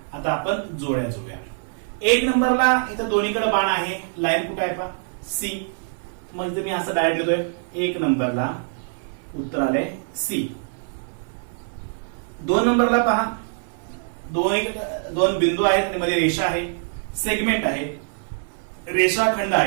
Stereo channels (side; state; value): left; silent; 56 dB below the other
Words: आता आपण जोड्या जुळूया. 1 नंबरला इथं दोन्हीकडे बाण आहे, लाईन कुठे आहे पहा सी. मग मी असं डायरेक्ट लिहितोय 1 नंबरला उत्तर आले सी. 2 नंबरला पहा 2 बिंदू आहेत आणि मध्ये रेषा आहे, सेगमेंट आहे, रेषाखंड